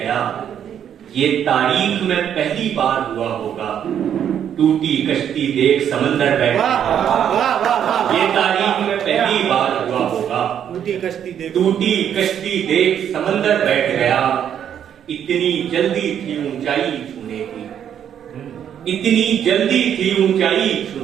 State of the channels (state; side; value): quieter; left; 9.2 dB